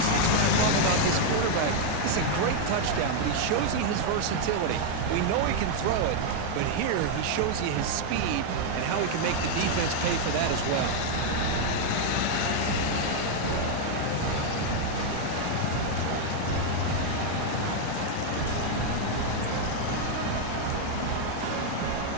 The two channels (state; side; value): different; both; correlation 0.00